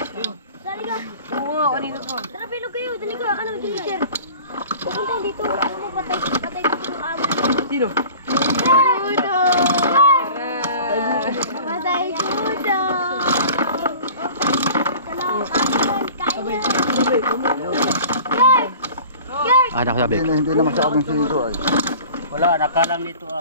Sali ka! Oo nga, kanina pa. Tara, bilog kayo! Dali ka! Ano, Ginger? Pupunta dito! Ano mo, patay dito yung amo. Sino? Kudo! Patay kudo! Kain na! Ah, nakasabi. Hindi na masyadong siro ay. Wala, nakalang dito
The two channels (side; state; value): both; inverted; correlation -0.43